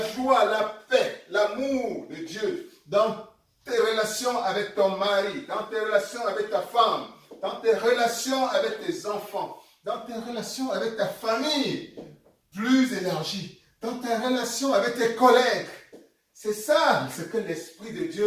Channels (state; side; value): identical; both; correlation 1.00